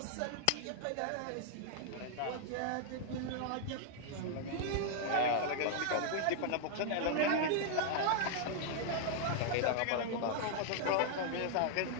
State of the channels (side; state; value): both; different; correlation 0.00